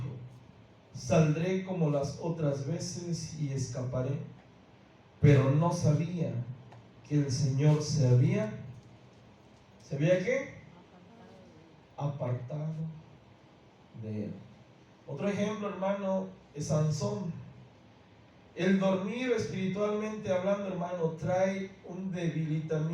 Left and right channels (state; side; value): identical; both; correlation 1.00